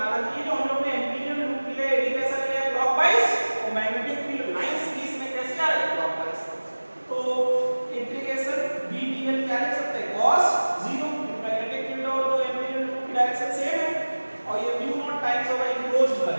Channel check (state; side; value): inverted; both; correlation -1.00